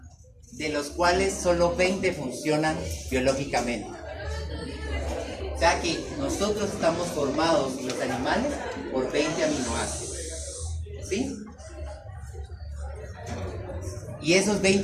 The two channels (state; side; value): identical; both; correlation 1.00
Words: de los cuales solo 20 funcionan biológicamente. O sea que nosotros estamos formados, y los animales, por 20 aminoácidos, ¿sí? Y esos